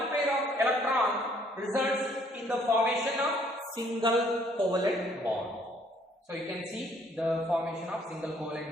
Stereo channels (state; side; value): normal; both; correlation 0.63